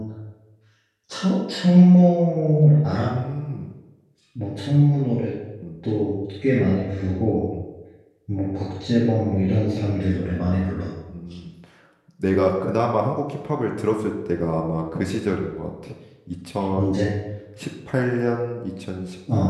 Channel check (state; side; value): identical; both; correlation 1.00